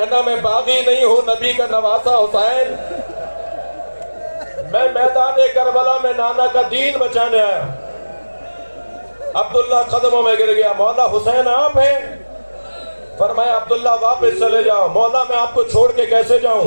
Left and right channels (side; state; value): both; inverted; correlation -1.00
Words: میں باغی نہیں ہوں، نبی کا نواسا حسین، میں میدان کربلا میں نانا کا دین بچانے آیا۔ عبداللہ قدموں میں گر گیا، مولا حسین آپ ہیں؟ فرمایا عبداللہ واپس چلے جاؤ۔ مولا میں آپ کو چھوڑ کے کیسے